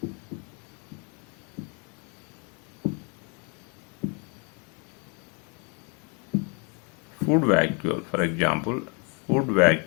Food vacuole, for example, food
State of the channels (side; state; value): right; quieter; 34.5 dB